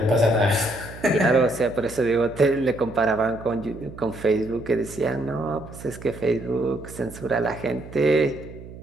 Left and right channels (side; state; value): right; noise; hum, 15 dB below the sound